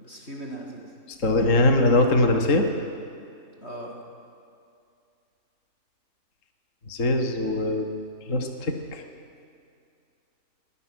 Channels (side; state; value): right; late; 3.7 ms